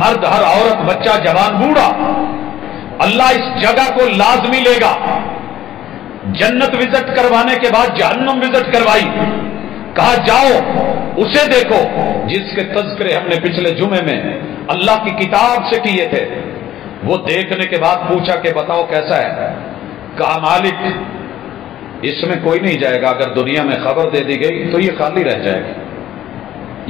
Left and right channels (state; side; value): quieter; right; 12.5 dB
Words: ہر عورت، بچہ، جوان، بوڑھا، اللہ اس جگہ کو لازمی لے گا۔ جنت وزٹ کروانے کے بعد جہنم وزٹ کروائی، کہا جاؤ اسے دیکھو جس کے تذکرے ہم نے پچھلے جمعے میں اللہ کی کتاب سے کیے تھے۔ وہ دیکھنے کے بعد پوچھا کہ بتاؤ کیسا ہے؟ کہا مالک اس میں کوئی نہیں جائے گا، اگر دنیا میں خبر دے دی گئی تو یہ خالی رہ جائے